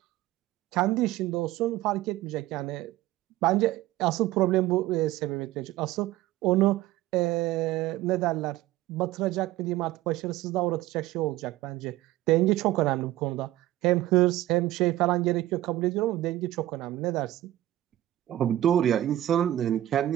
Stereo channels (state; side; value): quieter; left; 14.9 dB